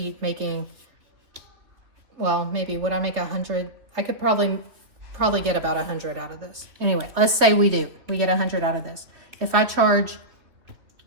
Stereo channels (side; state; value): left; late; 3.1 ms